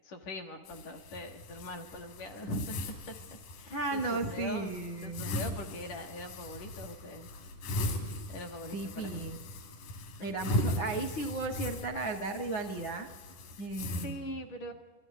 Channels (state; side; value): late; right; 10 ms